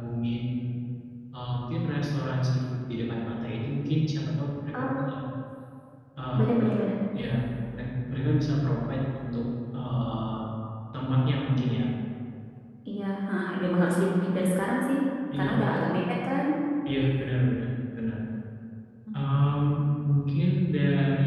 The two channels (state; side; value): identical; both; correlation 1.00